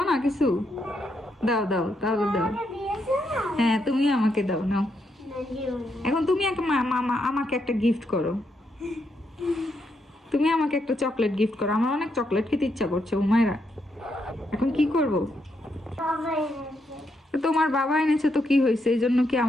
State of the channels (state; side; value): normal; both; correlation 0.79